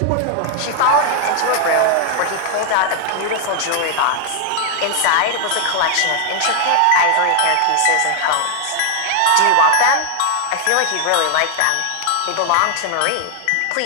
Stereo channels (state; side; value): different; both; correlation 0.00